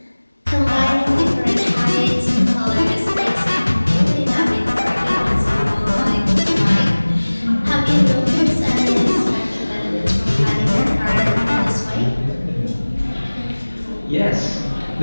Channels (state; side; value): inverted; both; correlation -1.00